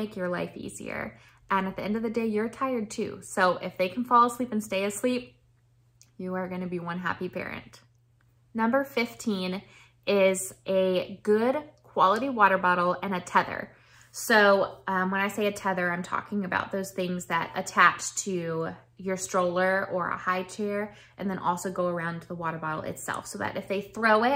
your life easier. And at the end of the day, you're tired too. So if they can fall asleep and stay asleep, you are gonna be one happy parent. Number 15 is a good quality water bottle and a tether. So when I say a tether, I'm talking about those things that attach to your stroller or a high chair and then also go around the water bottle itself, so that if they throw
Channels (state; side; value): identical; both; correlation 1.00